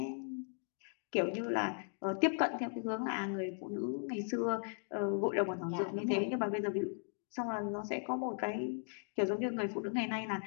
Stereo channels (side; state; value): right; silent; 53 dB below the other